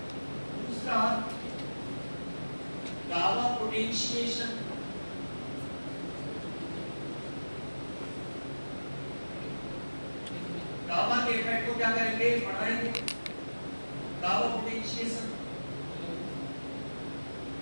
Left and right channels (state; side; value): inverted; both; correlation -1.00